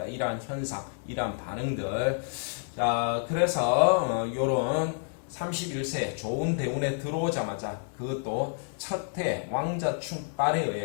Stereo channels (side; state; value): right; silent; 56 dB below the other